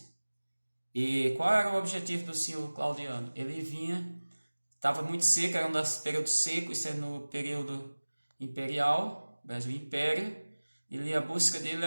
E qual era o objetivo do senhor Claudiano? Ele estava muito seco, era um dos períodos secos, isso é no período imperial, Brasil Império. A busca dele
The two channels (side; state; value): both; inverted; correlation -1.00